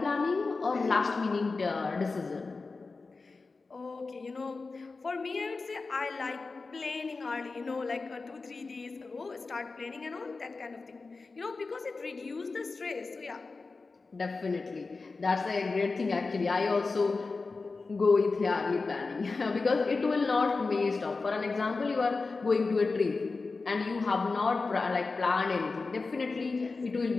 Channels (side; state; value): right; quieter; 4.0 dB